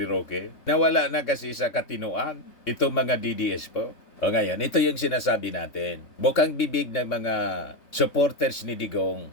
Roque. Nawala na kasi sa katinuan itong mga DDS po. O ngayon, ito yung sinasabi natin. Bukang bibig ng mga supporters ni Digong.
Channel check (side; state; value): right; late; 3.6 ms